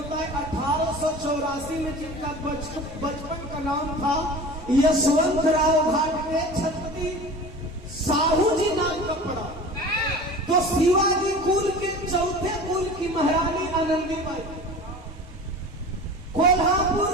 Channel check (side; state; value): both; normal; correlation 0.37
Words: है। 1884 में जिनका बचपन का नाम था यशवंतराव घाटगे, छत्रपति साहू जी नाम का पड़ा। तो शिवाजी कुल के चौथे कुल की महारानी आनंदीबाई, कोल्हापुर